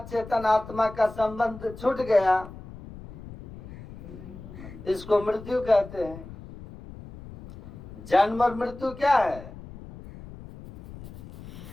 चेतन आत्मा का संबंध छूट गया, इसको मृत्यु कहते हैं। जन्म और मृत्यु क्या है?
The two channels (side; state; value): left; noise; rumble, 15 dB below the sound